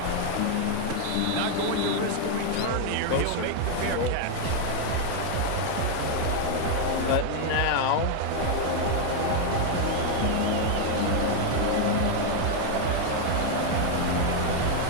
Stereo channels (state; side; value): different; both; correlation 0.00